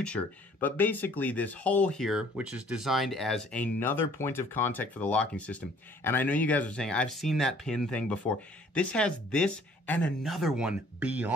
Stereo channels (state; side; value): normal; both; correlation 0.57